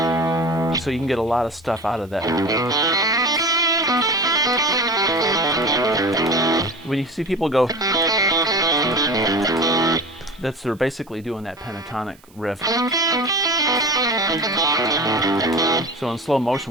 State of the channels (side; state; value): right; noise; hiss, 29 dB below the sound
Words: so you can get a lot of stuff out of that. When you see people go, they're basically doing that pentatonic riff. So in slow motion,